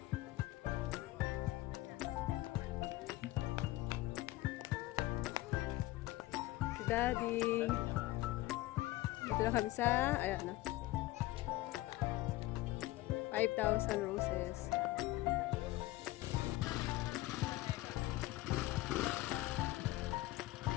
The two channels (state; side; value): quieter; right; 17.6 dB